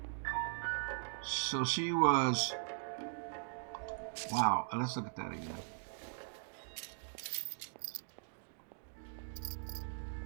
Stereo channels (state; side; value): silent; left; digital silence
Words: So she was... Wow. Let's look at that again.